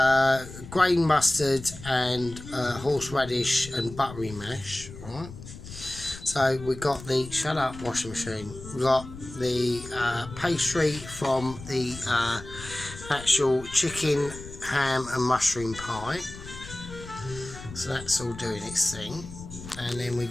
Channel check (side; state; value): left; noise; rumble, 14 dB below the sound